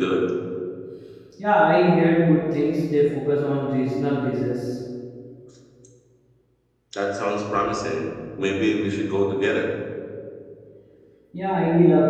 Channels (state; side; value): identical; both; correlation 1.00